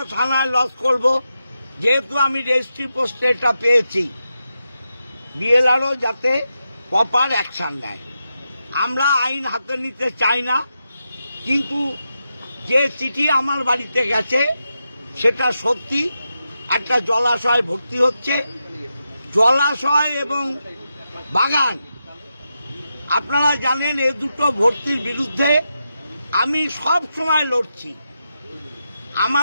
থানায় লজ করব, যেহেতু আমি রেজিস্ট্রি পোস্টে এটা পেয়েছি। বিএলআরও যাতে প্রপার অ্যাকশন নেয়। আমরা আইন হাতে নিতে চাই না, কিন্তু যে চিঠি আমার বাড়িতে গেছে সেটা সত্যি। একটা জলাশয় ভর্তি হচ্ছে, জলাশয় এবং বাগান। আপনারা জানেন এই দুটো ভর্তির বিরুদ্ধে আমি সব সময় লড়ছি।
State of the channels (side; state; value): both; inverted; correlation -0.88